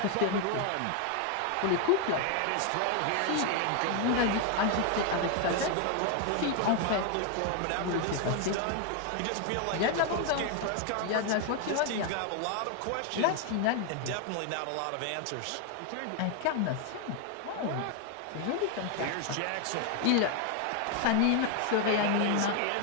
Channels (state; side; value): different; both; correlation 0.01